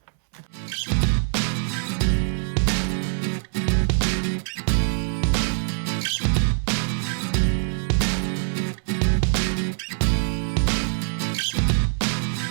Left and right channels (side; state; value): left; silent; 63 dB below the other